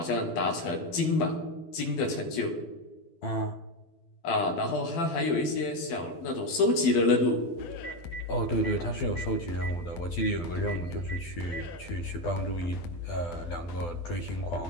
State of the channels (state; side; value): late; right; 12 ms